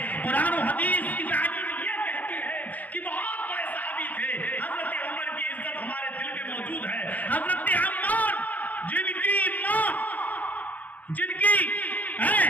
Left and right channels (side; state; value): right; late; 0.078 ms